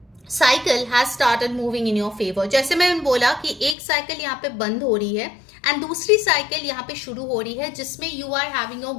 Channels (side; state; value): right; drops out; at 3.8 s